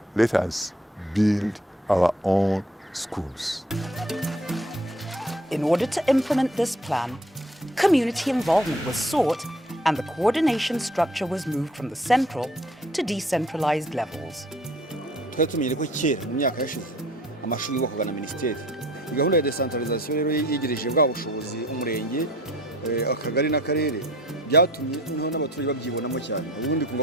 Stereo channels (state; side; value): normal; both; correlation 0.54